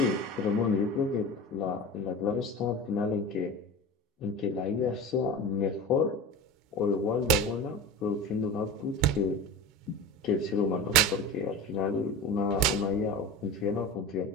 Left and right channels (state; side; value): normal; both; correlation 0.30